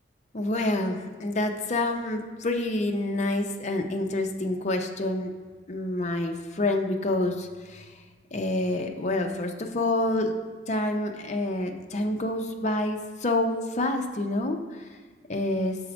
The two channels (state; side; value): normal; both; correlation 0.41